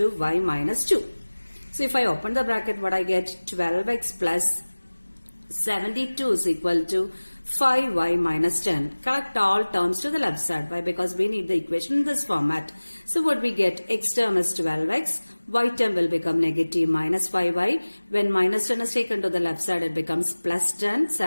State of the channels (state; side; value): inverted; both; correlation -1.00